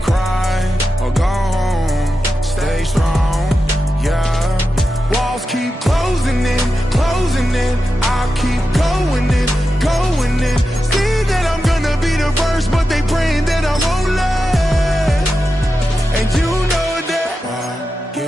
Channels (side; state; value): both; normal; correlation 0.91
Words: or go home. Stay strong, yeah. Walls keep closing in, closing in. I keep going in, going in. See that I'm gonna be the first, but they praying that I won't let. And you know that I